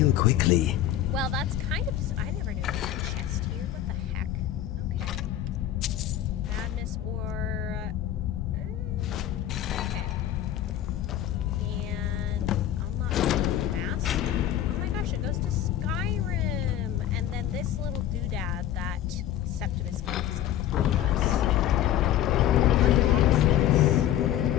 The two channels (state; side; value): quieter; right; 11.6 dB